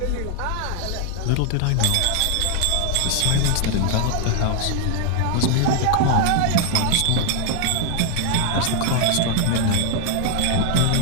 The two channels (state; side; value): different; both; correlation 0.00